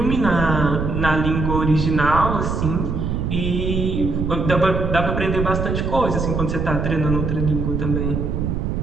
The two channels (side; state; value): right; noise; rumble, 1 dB below the sound